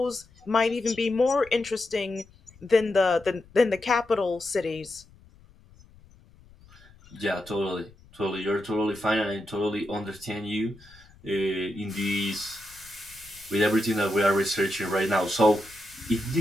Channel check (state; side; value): noise; left; rumble, 25 dB below the sound